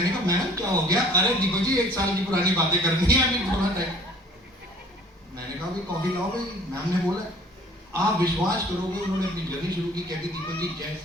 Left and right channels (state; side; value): normal; both; correlation 0.52